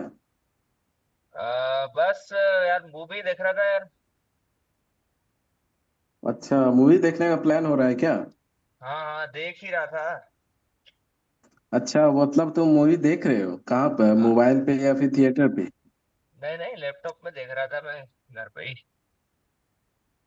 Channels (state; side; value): identical; both; correlation 1.00